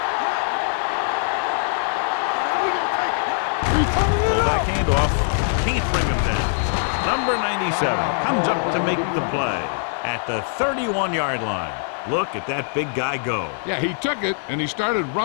run, man. So we gonna take it. Fullback handoff. Can't bring him down. Number 97 comes up to make the play at the 31-yard line. Look at that big guy go. Yeah, he took it, and he started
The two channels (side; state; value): right; silent; digital silence